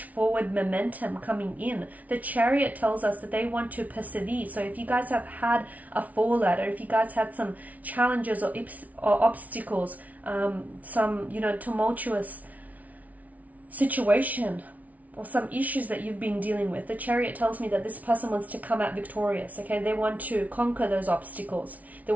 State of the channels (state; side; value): late; left; 0.072 ms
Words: forward momentum coming in. The Chariot tells us that they want to persevere. So if you guys have had a fallout, or if you guys had some challenges or obstacles, some, tumultuous situation, or some issues that you've been dealing with, the Chariot tells me that this person wants to come out victorious. Okay, they want to conquer those obstacles. They